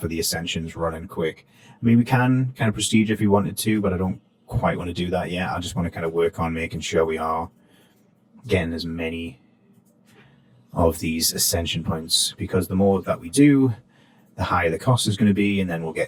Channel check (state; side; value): identical; both; correlation 1.00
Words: the Ascension's running quick. I mean, we can kind of prestige if we wanted to, but I don't quite want to do that yet. I just want to kind of work on making sure we are getting as many of these Ascension points, because the more that we do, the higher the cost is going to be, and then we'll